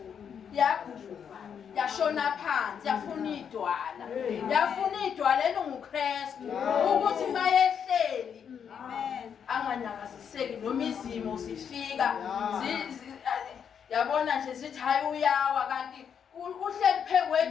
yaguba yashona phansi yafuna idwala elinguKristu ukuthi mayehleli anganyakaziseki noma izimo zifika yabona nje zithi hayi uyawa kanti uhleli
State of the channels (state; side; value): quieter; right; 7.6 dB